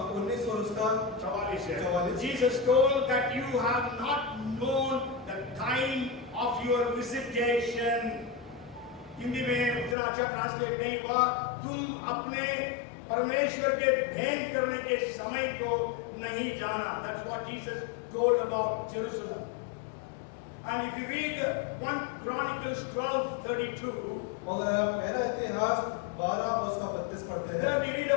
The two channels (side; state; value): right; drops out; at 10.0 s